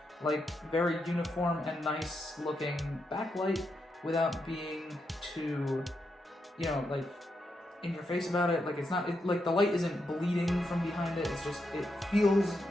like very uniform and nice looking backlight without being too, you know, like in your face about it. Like it's not, like the light isn't bleeding from behind it. It's just, it feels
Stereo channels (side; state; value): both; normal; correlation 0.83